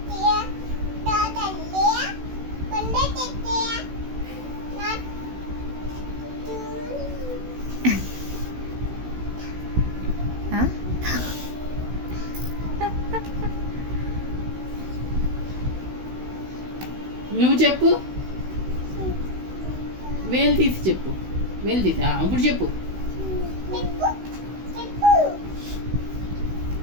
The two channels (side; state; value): left; late; 16 ms